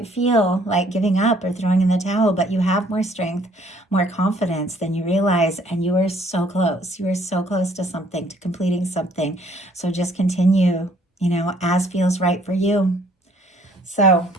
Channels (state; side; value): normal; both; correlation 0.61